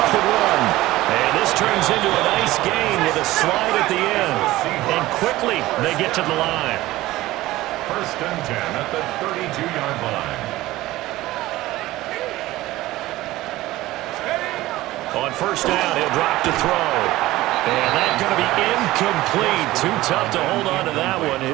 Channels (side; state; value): left; quieter; 17.2 dB